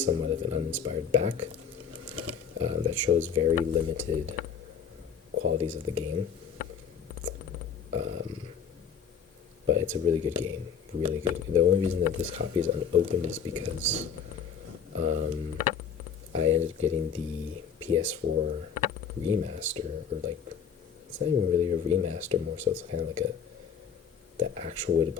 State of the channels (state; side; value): quieter; right; 7.0 dB